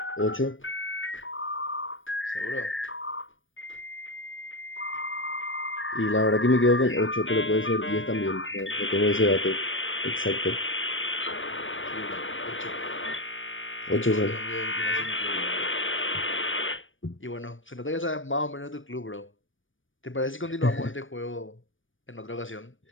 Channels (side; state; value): right; late; 0.57 ms